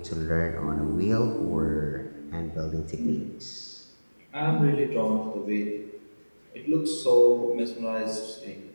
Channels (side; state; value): both; inverted; correlation -1.00